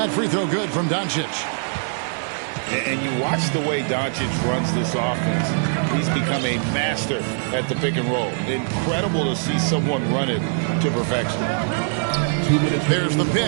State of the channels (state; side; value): silent; left; 64 dB below the other